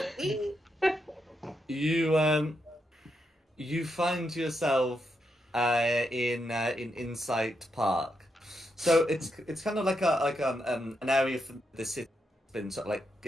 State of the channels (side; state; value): both; normal; correlation 0.82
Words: You find yourself in Insight Park. So it's kind of like an area for the city that's been sort of like